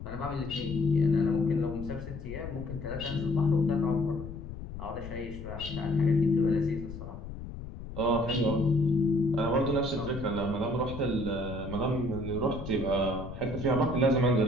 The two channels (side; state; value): left; noise; rumble, 10 dB below the sound